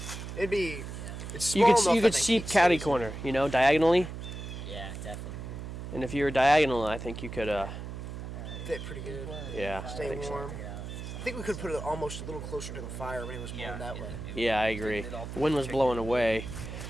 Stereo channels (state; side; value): noise; right; hum, 8 dB below the sound